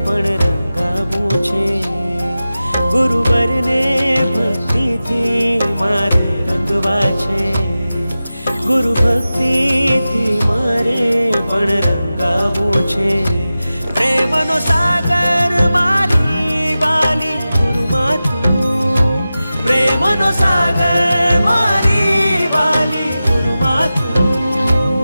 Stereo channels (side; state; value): both; inverted; correlation -0.95